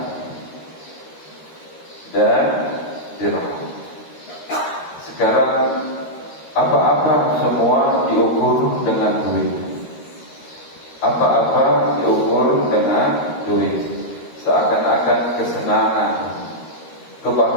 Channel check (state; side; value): late; right; 13 ms